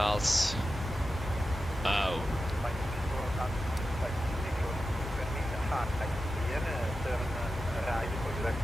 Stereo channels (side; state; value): both; normal; correlation 0.92